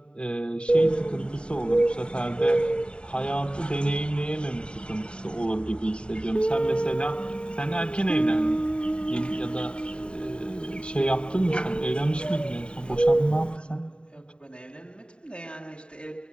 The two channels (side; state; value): right; late; 0.052 ms